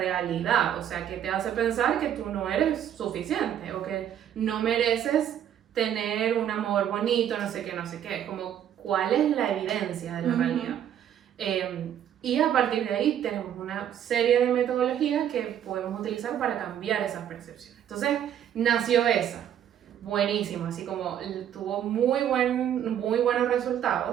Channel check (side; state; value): left; quieter; 10.1 dB